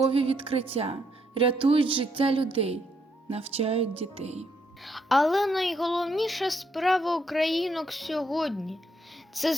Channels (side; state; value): both; normal; correlation 0.74